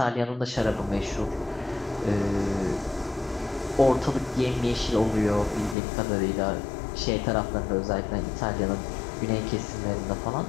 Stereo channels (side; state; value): right; drops out; at 5.8 s